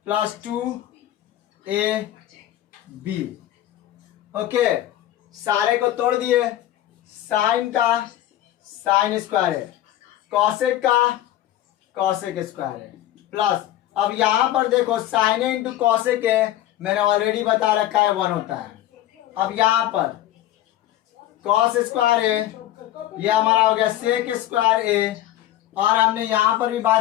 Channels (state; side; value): quieter; right; 13.4 dB